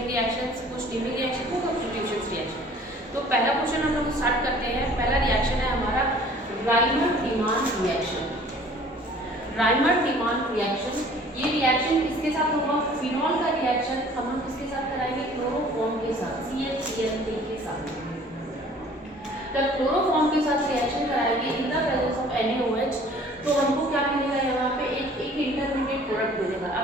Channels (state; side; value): normal; both; correlation 0.51